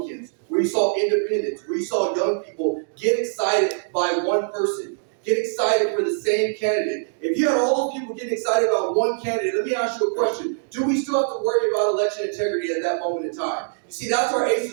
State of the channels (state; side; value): silent; left; digital silence